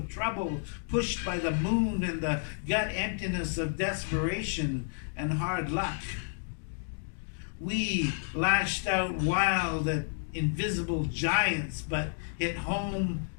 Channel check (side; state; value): right; silent; digital silence